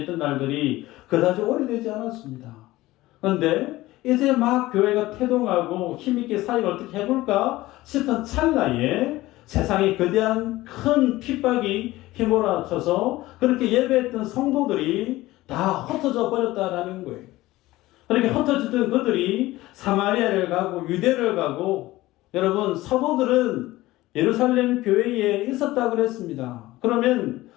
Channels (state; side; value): quieter; right; 17.8 dB